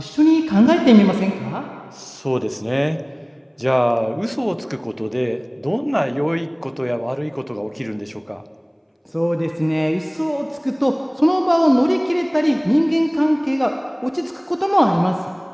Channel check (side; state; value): both; identical; correlation 1.00